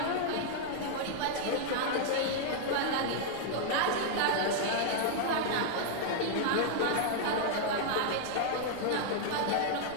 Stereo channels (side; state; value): both; different; correlation -0.01